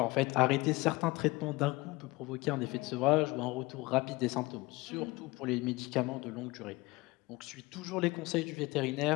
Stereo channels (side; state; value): right; quieter; 22.2 dB